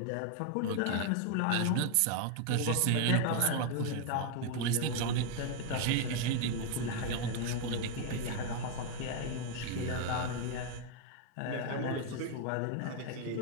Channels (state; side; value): different; both; correlation 0.00